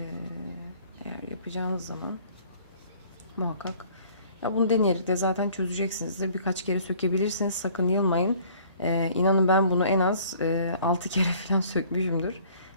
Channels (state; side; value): inverted; both; correlation -0.55